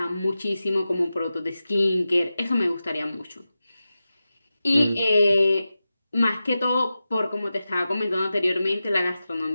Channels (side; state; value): both; inverted; correlation -0.93